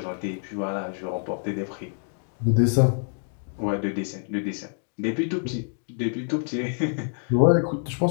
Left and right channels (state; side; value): silent; right; 58 dB below the other